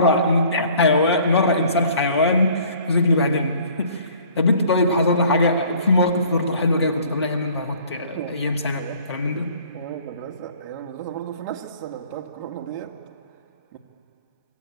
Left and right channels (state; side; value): inverted; both; correlation -0.53